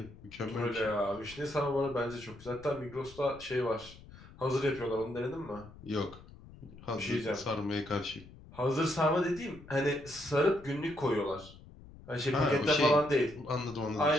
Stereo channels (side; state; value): left; noise; rumble, 19 dB below the sound